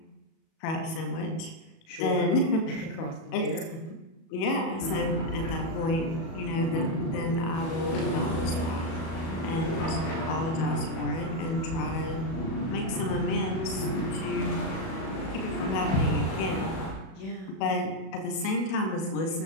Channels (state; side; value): late; right; 37 ms